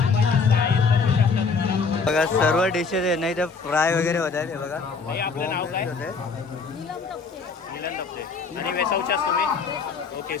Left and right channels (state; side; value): quieter; right; 4.8 dB